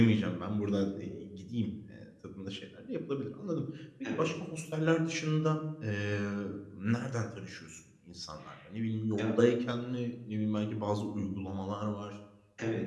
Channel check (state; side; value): identical; both; correlation 1.00